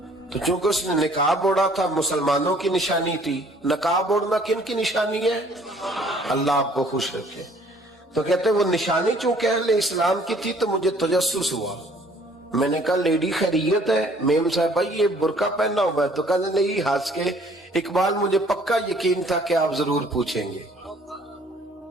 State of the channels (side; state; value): both; normal; correlation 0.58